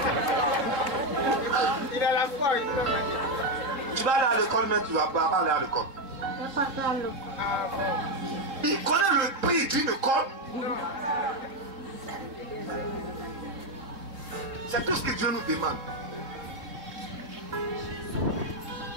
Il a la foi. Tu vas aller à l'école, mais tu ne vas pas aller à l'école. Il connaît le prix d'une école. C'est tout ce que Dieu nous demande.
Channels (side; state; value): left; late; 3.6 ms